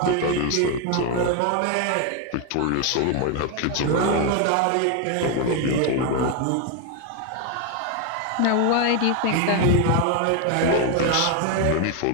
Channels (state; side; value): different; both; correlation 0.01